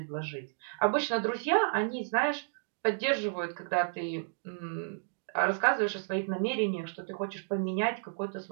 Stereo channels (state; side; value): silent; left; digital silence